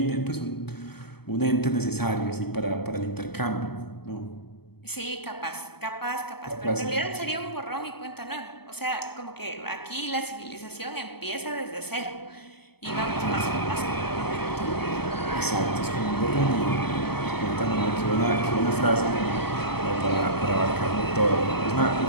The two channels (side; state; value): right; late; 0.97 ms